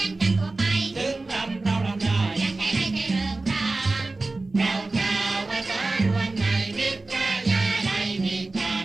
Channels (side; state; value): left; quieter; 3.3 dB